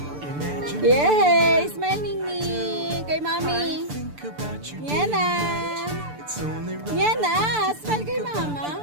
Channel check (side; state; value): left; late; 6.8 ms